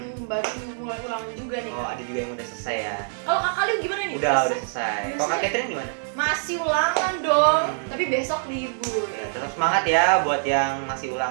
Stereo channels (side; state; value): left; silent; digital silence